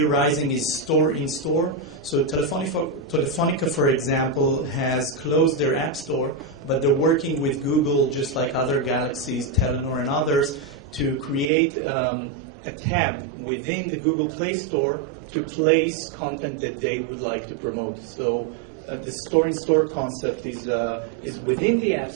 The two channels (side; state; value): left; drops out; at 11.5 s